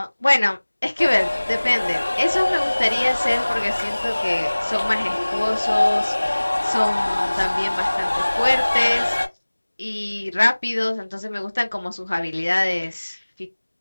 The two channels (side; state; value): both; inverted; correlation -1.00